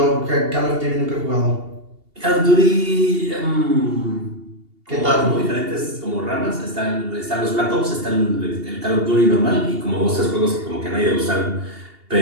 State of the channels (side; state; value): left; late; 2.8 ms